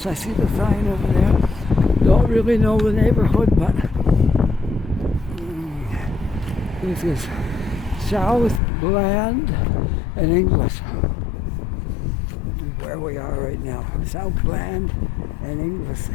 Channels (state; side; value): drops out; right; at 8.6 s